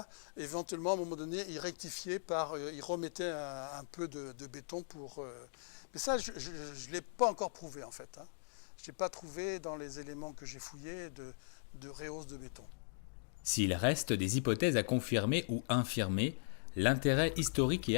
éventuellement à un moment donné il rectifiait il remettait un peu de béton pour. Mais ça je ne l'ai pas encore prouvé en fait. Je n'ai pas trouvé dans les éléments que j'ai fouillés de rehausse de béton. S'il reste des hypothèses à confirmer ou infirmer, l'intérêt historique et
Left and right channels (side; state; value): right; silent; digital silence